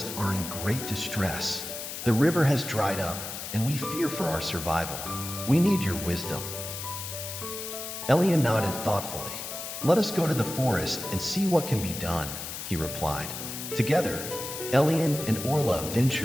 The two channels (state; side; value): noise; left; hiss, 7 dB below the sound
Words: are in great distress. The river has dried up, and we fear for our survival. We need your wisdom." Elian nodded thoughtfully. "Let us go to the forest and see what can be done," he replied. Together, Elian and Orla